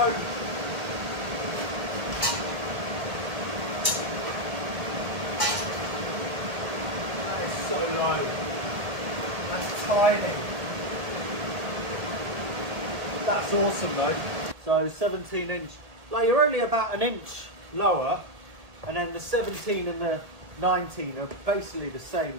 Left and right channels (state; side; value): late; left; 1.5 ms